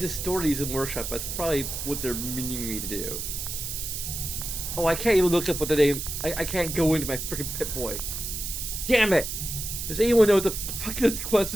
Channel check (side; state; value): right; noise; hiss, 5 dB below the sound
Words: store these in workshop. That's probably what they're meaning me to do. Oh, I can't even look up what the name. I can't go into my freaking Pip-Boy. Damn it! Does anyone know what the fuck this quest